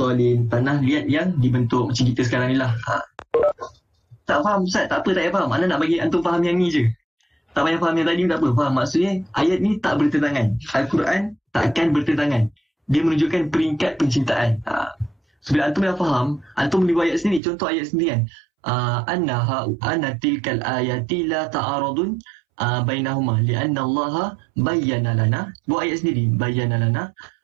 tanah liat yang dibentuk macam kita sekarang ni lah. Tak faham Ustaz? Tak apa, tak payah faham. Mana nak bagi antum faham yang ni je. Tak payah faham yang tadi, tak apa. Faham? Maksudnya ayat ni tak bertentangan. Al-Quran takkan bertentangan. Dia menunjukkan peringkat penciptaan. Bila antum dah faham, antum boleh buat ayat sendiri. Contoh ayat sendiri kan. Anna tilkal ayati la ta'aradun bainahuma li'anna Allah bayyana lana. Buat ayat sendiri. Bayyana lana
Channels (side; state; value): left; drops out; at 17.4 s